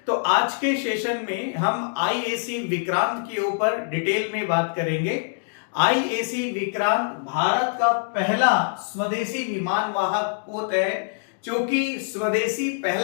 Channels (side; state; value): right; silent; digital silence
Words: तो आज के सेशन में हम आईएसी विक्रांत के ऊपर डिटेल में बात करेंगे। आईएसी विक्रांत भारत का पहला स्वदेशी विमान वाहक पोत है। क्योंकि स्वदेशी